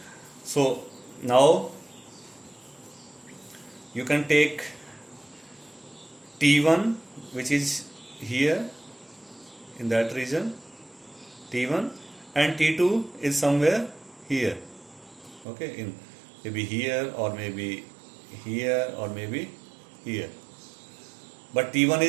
so now you can take t1 which is here in that region, t1, and t2 is somewhere here. Okay, in maybe here or maybe here or maybe here, but t1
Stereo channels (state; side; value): drops out; left; at 15.5 s